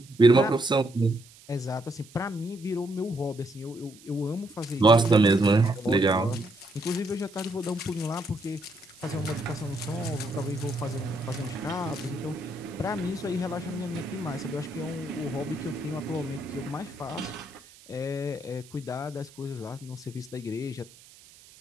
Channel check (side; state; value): right; noise; hiss, 23 dB below the sound